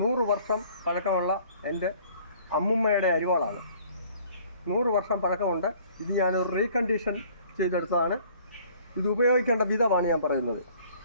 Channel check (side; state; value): both; inverted; correlation -0.55